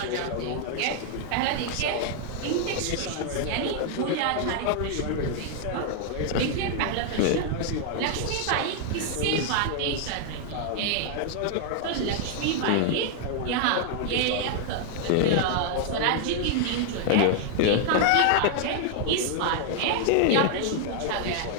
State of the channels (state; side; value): different; both; correlation 0.00